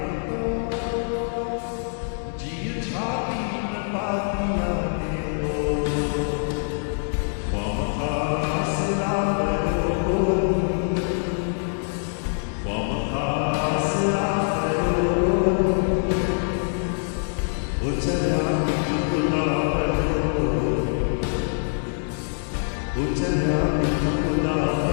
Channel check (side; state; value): right; silent; 61 dB below the other